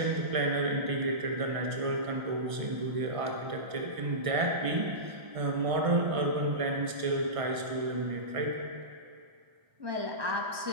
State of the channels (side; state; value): left; late; 1.6 ms